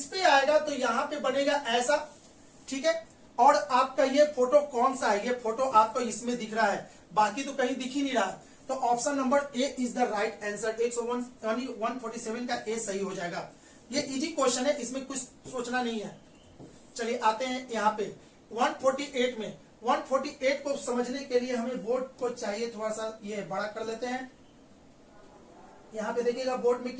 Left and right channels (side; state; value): both; identical; correlation 1.00